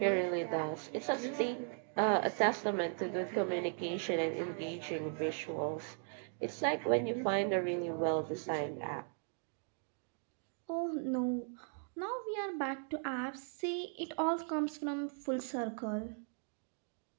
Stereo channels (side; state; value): left; silent; 53 dB below the other